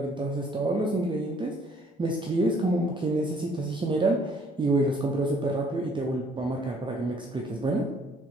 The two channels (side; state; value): both; normal; correlation 0.61